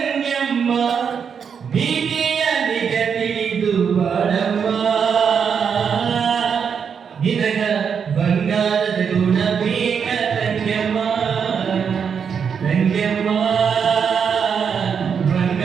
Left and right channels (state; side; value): quieter; left; 6.8 dB